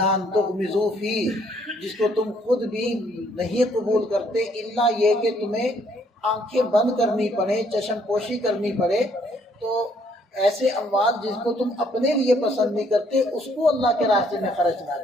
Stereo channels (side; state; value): both; normal; correlation 0.66